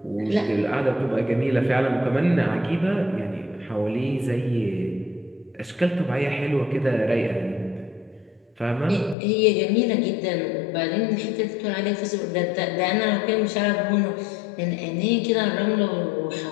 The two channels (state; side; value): drops out; right; at 9.2 s